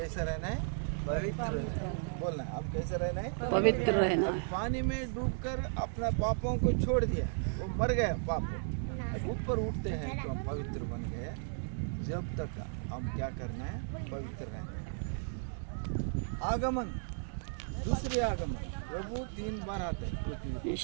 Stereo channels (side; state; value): left; silent; digital silence